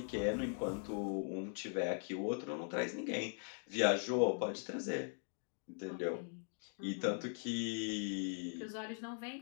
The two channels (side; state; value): right; silent; 51 dB below the other